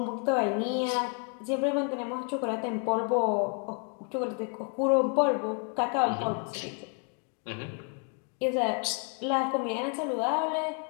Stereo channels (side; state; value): right; quieter; 38.6 dB